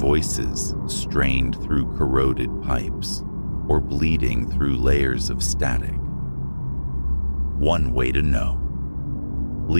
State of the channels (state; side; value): inverted; both; correlation -1.00